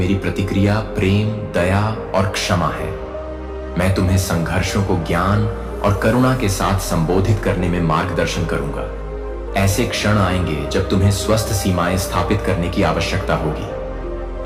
प्रतिक्रिया प्रेम, दया और क्षमा है। मैं तुम्हें संघर्षों को ज्ञान और करुणा के साथ संबोधित करने में मार्गदर्शन करूंगा। ऐसे क्षण आएंगे जब तुम्हें स्वस्थ सीमाएं स्थापित करने की आवश्यकता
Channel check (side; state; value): both; identical; correlation 1.00